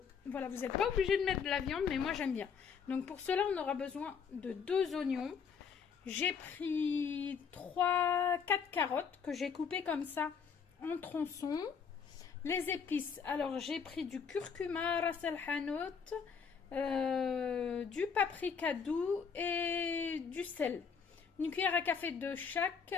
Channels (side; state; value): right; quieter; 6.3 dB